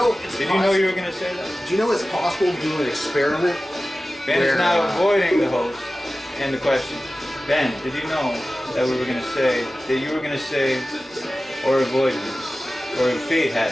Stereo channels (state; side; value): normal; both; correlation 0.96